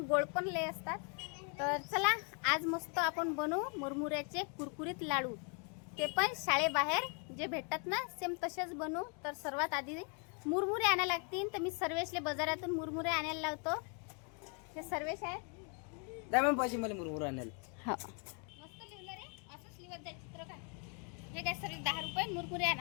गोड पण लय असतात. तर चला आज मस्त आपण बनवू मुरमुऱ्याचे कुरकुरीत लाडू, ते पण शाळेबाहेर जे भेटतात ना सेम तसेच बनवू. तर सर्वात आधी मुरमुरे आणायला लागतील. तर मी सर्वेशले बाजारातून मुरमुरे आणायला लावतो. हे सर्वेश आहे. द्या मग पैसे मला मुरमुरे आणायला. हा मस्त लिहिलं रे, असंच लिहत जाय चित्र का. हे काय सर्व 10 रुपये मुरमुरे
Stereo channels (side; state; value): right; quieter; 38.4 dB